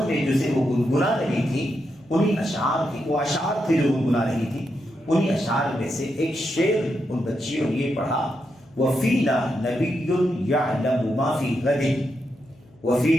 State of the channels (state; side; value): noise; left; hum, 29 dB below the sound